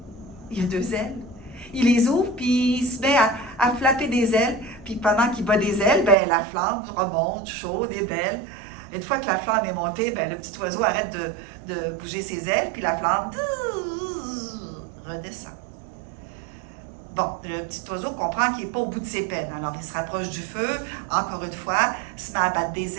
Il a 2 ailes. Il les ouvre, puis il se met à flapper des ailes. Puis pendant qu'il bat des ailes, la flamme remonte, chaude et belle. Une fois que la flamme est montée, le petit oiseau arrête de bouger ses ailes, puis la flamme redescend. Bon, le petit oiseau comprend qu'il n'est pas au bout de ses peines. Alors, il se rapproche du feu, encore une fois, se met à battre des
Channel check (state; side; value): drops out; left; at 6.2 s